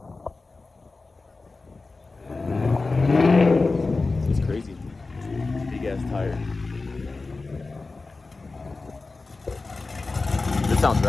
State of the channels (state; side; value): quieter; right; 3.7 dB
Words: It's crazy. Big ass tire. This sounds